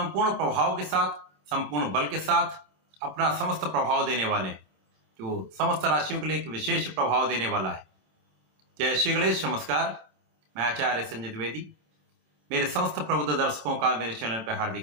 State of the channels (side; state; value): left; late; 27 ms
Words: प्रभाव के साथ, संपूर्ण बल के साथ अपना समस्त प्रभाव देने वाले हैं, जो समस्त राशियों के लिए एक विशेष प्रभाव देने वाला है। जय श्री गणेश, नमस्कार। मैं आचार्य संजय द्विवेदी। मेरे समस्त प्रबुद्ध दर्शकों का मेरे चैनल पर